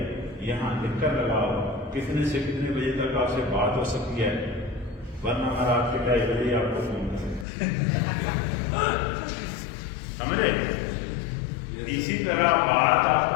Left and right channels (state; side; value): drops out; right; at 7.5 s